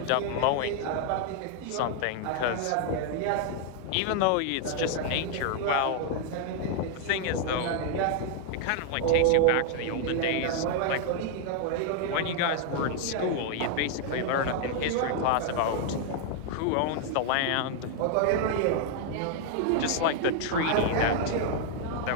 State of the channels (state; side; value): different; both; correlation 0.00